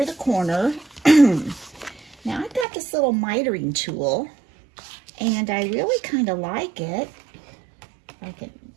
the corner. Now I've got this little mitering tool and I really kind of like it. I can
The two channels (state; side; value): drops out; left; at 2.7 s